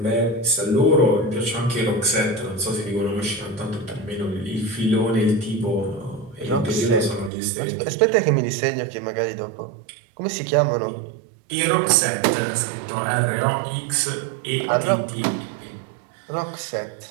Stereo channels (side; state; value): left; drops out; at 7.3 s